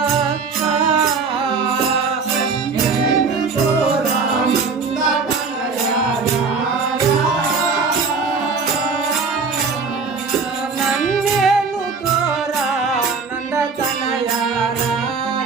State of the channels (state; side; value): quieter; left; 4.8 dB